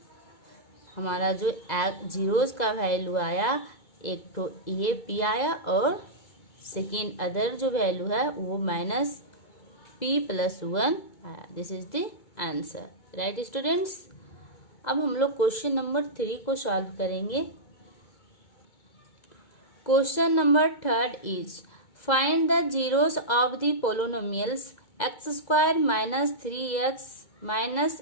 हमारा जो जीरोस का वैल्यू आया, एक तो ए पी आया और सेकेंड अदर जो वैल्यू है वो माइनस p प्लस 1 आया। This is the answer, right students. अब हम लोग क्वेश्चन नंबर 3 को सॉल्व करेंगे। Question number 3 is find the zeros of the polynomials x square minus 3x minus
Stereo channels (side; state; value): right; late; 2.0 ms